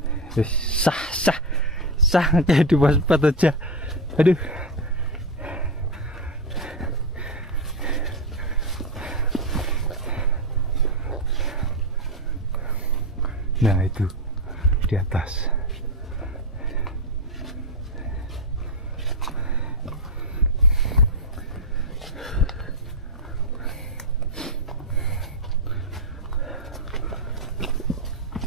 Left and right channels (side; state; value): both; normal; correlation 0.10